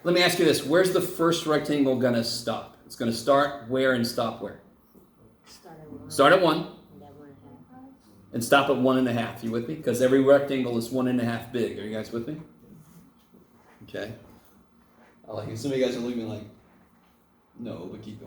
let me ask you this. Where's the first rectangle going to stop? It's going to start where and stop where? Start at 1 and stop at 1.5. You with me? Because every rectangle is 1.5 big. Are you guys with me? Okay. I like it. Some of you guys are looking like, no, but keep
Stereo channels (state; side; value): identical; both; correlation 1.00